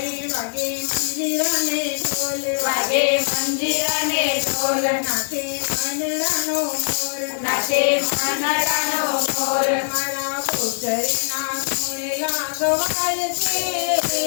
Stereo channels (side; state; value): right; silent; digital silence